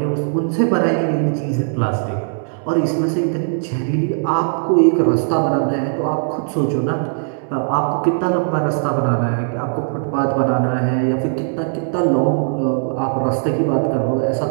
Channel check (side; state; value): left; silent; 67 dB below the other